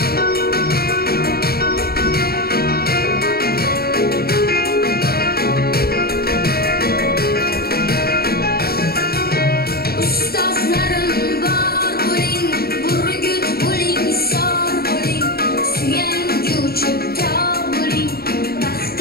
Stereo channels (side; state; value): right; late; 0.45 ms